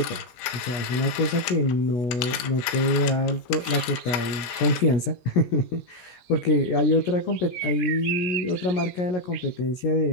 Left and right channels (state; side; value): late; right; 17 ms